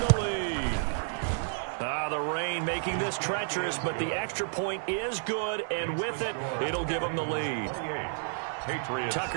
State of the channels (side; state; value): left; silent; digital silence